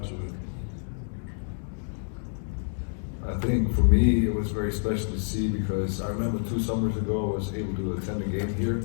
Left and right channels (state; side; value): silent; right; digital silence